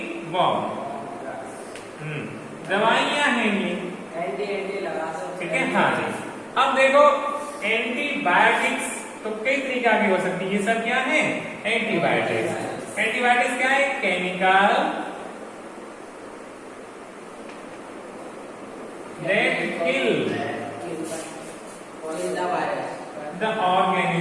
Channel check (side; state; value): both; identical; correlation 1.00